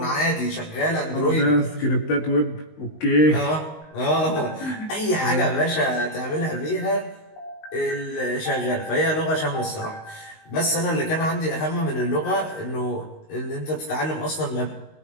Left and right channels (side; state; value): right; late; 19 ms